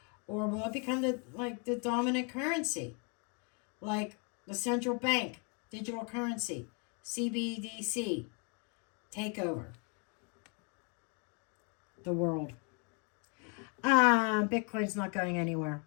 Or will it become the dominant currency? Like the central bank, digital currency, CBDC, take over the world. Bitcoin's not going anywhere.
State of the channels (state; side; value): quieter; right; 36.3 dB